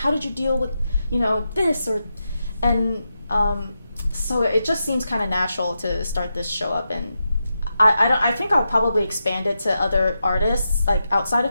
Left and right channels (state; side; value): inverted; both; correlation -0.87